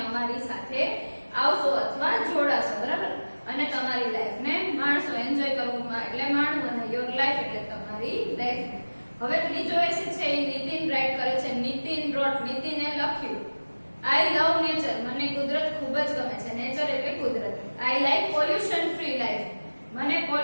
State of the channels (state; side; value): inverted; both; correlation -1.00